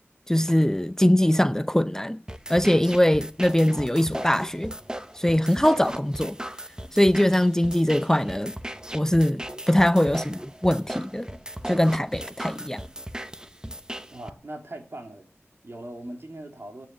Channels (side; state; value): both; normal; correlation 0.98